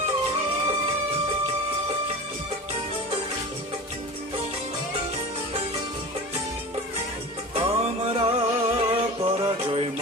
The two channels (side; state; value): both; normal; correlation 0.33